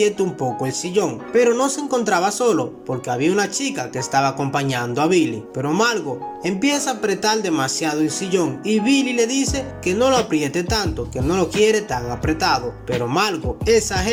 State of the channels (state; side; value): identical; both; correlation 1.00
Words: un poco el sillón, pero no se encontraba solo porque había una chica que estaba acompañando a Billy. Pero Margo empieza a apretar demasiado el sillón y Billy le dice que no lo apriete tanto, que no lo quiere tan apretado, pero Margo